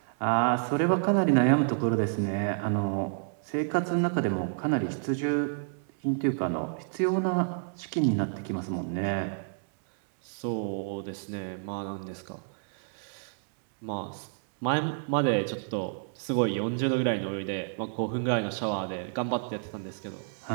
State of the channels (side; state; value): left; silent; 58 dB below the other